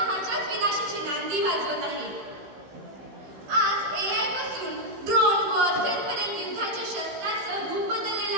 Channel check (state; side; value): late; left; 15 ms